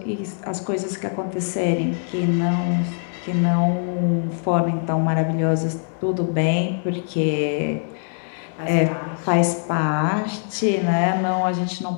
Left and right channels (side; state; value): right; silent; 61 dB below the other